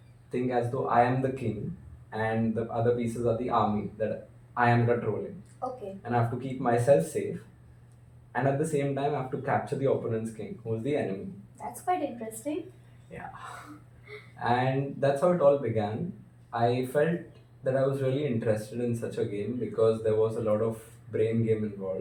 as though I am the king and the other pieces are the army that I am controlling. Okay. And I have to keep myself safe, and at the same time I have to capture the opponent's king, who is the enemy. That's quite interesting. Yeah. And that's how it all began. I felt that I was really interested in such a game because there was a lot of brain game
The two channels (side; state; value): both; identical; correlation 1.00